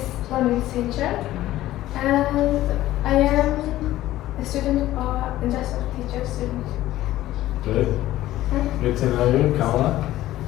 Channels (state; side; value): quieter; right; 15.0 dB